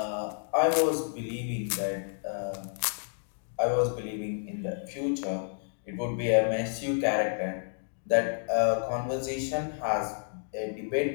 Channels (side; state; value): right; silent; digital silence